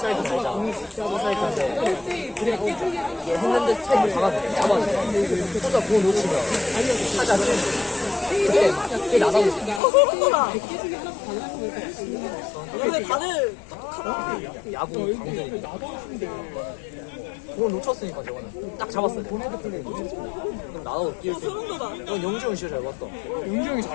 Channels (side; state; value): right; drops out; at 9.8 s